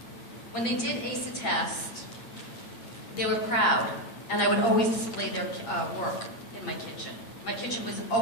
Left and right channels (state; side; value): late; right; 8.6 ms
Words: When they did ace a test, they were proud, and I would always display their work in my kitchen. My kitchen was